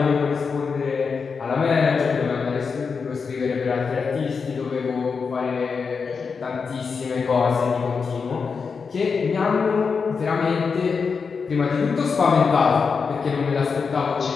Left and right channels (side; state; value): right; quieter; 5.4 dB